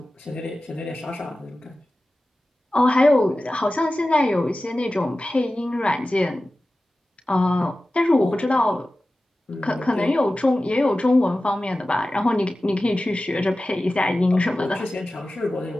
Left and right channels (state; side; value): normal; both; correlation 0.95